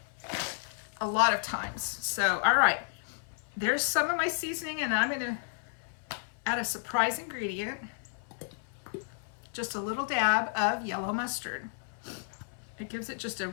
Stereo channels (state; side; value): silent; right; 56 dB below the other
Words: a lot of times. So, all right, there's some of my seasoning, and I'm going to add a surprise ingredient, just a little dab of yellow mustard. It gives it just a